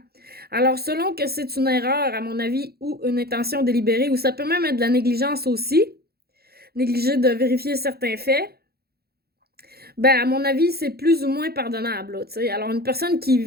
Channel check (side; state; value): left; late; 0.46 ms